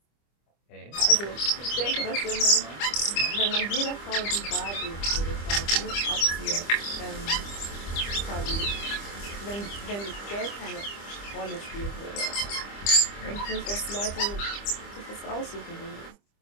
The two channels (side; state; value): right; late; 25 ms